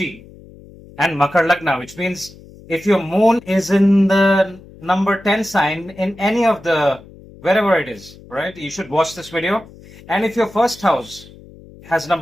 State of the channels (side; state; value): left; noise; hum, 21 dB below the sound